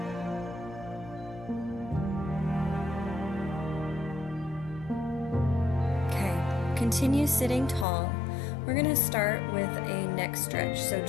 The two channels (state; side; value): drops out; right; at 7.9 s